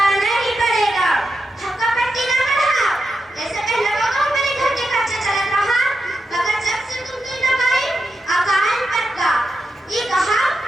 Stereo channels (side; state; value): both; normal; correlation 0.87